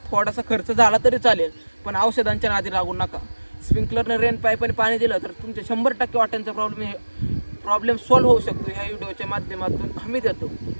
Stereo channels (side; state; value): both; inverted; correlation -1.00